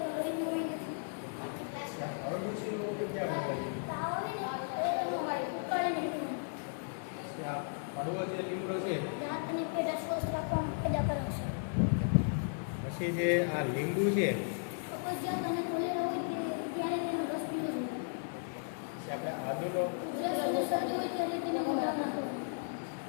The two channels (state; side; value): silent; right; 54 dB below the other